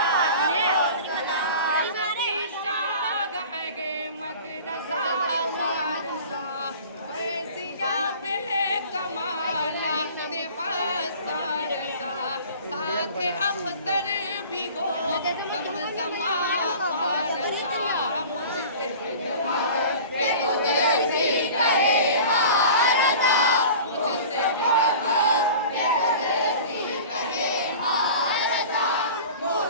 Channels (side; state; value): both; inverted; correlation -0.40